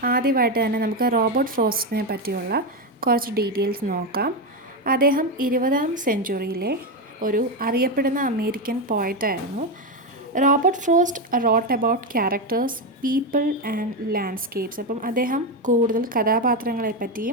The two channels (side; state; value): both; normal; correlation 0.10